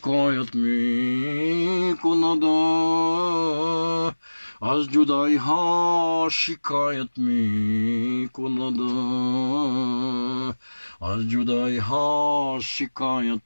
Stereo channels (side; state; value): both; inverted; correlation -1.00